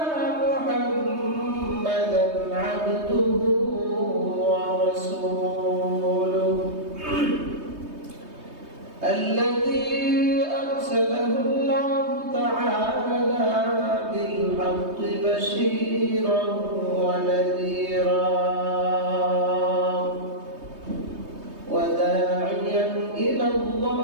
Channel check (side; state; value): left; late; 3.2 ms